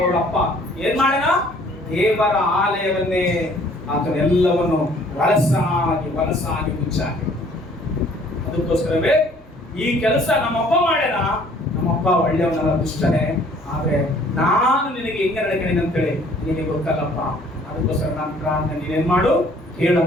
ಏನ್ ಮಾಡ್ಯಾನ? ದೇವರ ಆಲಯವನ್ನೇ ಅದನ್ನೆಲ್ಲವನ್ನು ವಲಸಾಗಿ ಮುಚ್ಚಾಕಿ. ಅದಕ್ಕೋಸ್ಕರವೇ ಈ ಕೆಲಸ ನಮ್ಮಪ್ಪ ಮಾಡ್ಯಾನ. ನಮ್ಮಪ್ಪ ಒಳ್ಳೆಯವನಲ್ಲ, ದುಷ್ಟನೇ. ಆದ್ರೆ ನಾನು ನಿನಗೆ ಹೆಂಗೆ ನಡ್ಕೊಂಡೇನೆ ಅಂತೇಳಿ ನಿನಗೆ ಗೊತ್ತಲ್ಲಪ್ಪ. ಅದಕ್ಕೋಸ್ಕರ ನಾನು ಪ್ರಾರ್ಥನೆ ನೀನೇನ್ ಮಾಡು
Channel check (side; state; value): both; normal; correlation 0.57